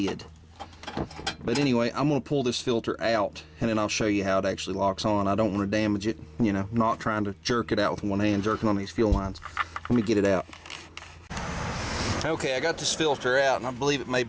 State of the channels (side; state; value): both; identical; correlation 1.00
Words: But anyway, I'm going to pull this filter out, and then I'll show you how it actually locks on. I don't want to damage it, you know, not trying to jerk it out with one hand, jerking on these fuel lines. Let me get it out. Okay, I got this filter out, and I believe it may